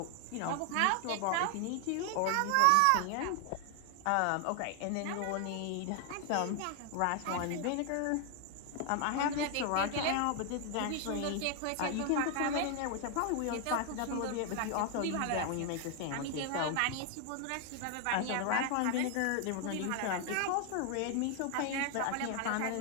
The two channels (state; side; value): different; both; correlation 0.00